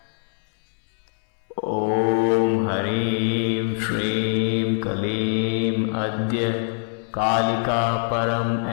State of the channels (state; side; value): silent; right; 61 dB below the other